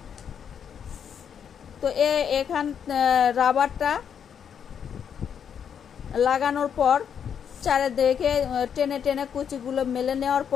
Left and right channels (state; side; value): quieter; right; 7.9 dB